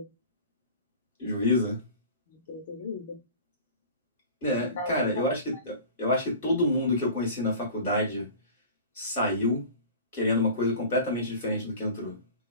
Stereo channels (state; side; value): inverted; both; correlation -0.39